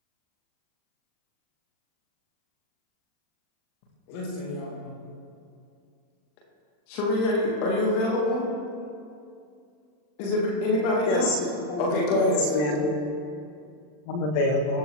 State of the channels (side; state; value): right; late; 40 ms